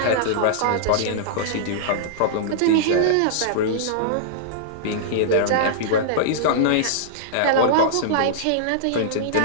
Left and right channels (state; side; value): different; both; correlation -0.02